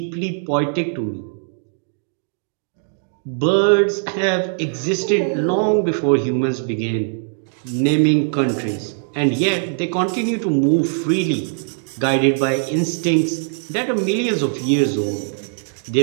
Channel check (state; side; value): silent; left; digital silence